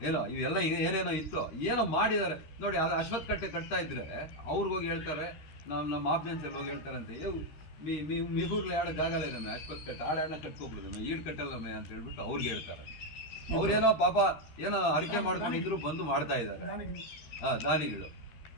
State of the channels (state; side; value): late; right; 13 ms